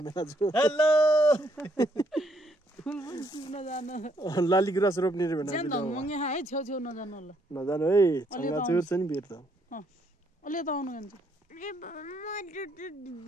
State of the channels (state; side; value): normal; both; correlation 0.71